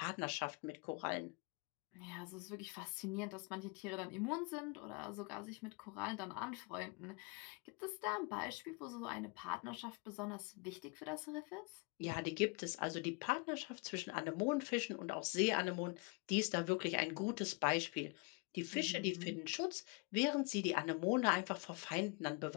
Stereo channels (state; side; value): quieter; right; 30.6 dB